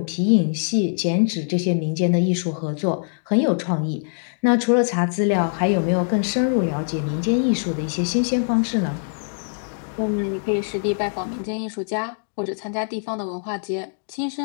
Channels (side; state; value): right; silent; digital silence